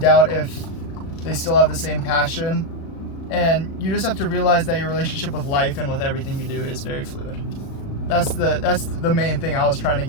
if they still have the same passion. And you just have to realize that your relationship with life and with everything you do is very fluid. That's the main thing I was trying to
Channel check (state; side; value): late; right; 36 ms